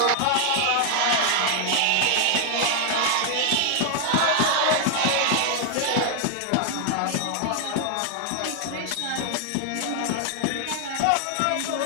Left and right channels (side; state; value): both; different; correlation 0.00